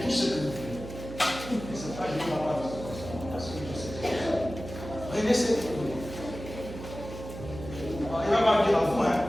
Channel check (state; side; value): noise; right; hum, 11 dB below the sound